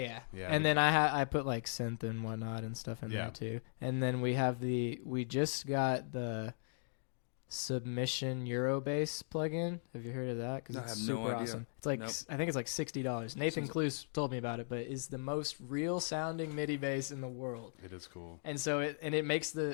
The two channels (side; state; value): right; silent; digital silence